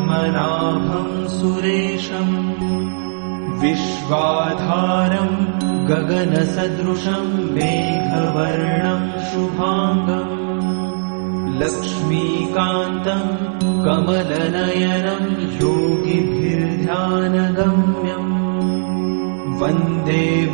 सुरेशम् विश्वाधारम् गगनसदृशम् मेघवर्णम् शुभाङ्गम् लक्ष्मीकान्तम् कमलनयनम् योगिभिर्ध्यानगम्यम् वन्दे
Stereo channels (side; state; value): left; silent; 67 dB below the other